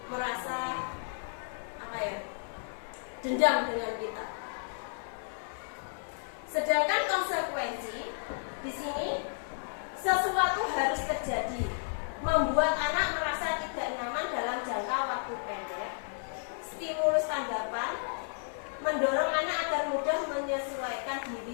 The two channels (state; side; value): silent; right; 56 dB below the other